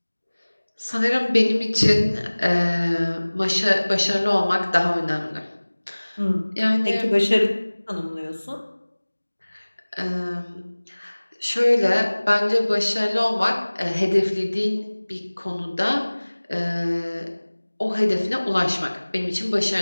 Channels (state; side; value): inverted; both; correlation -1.00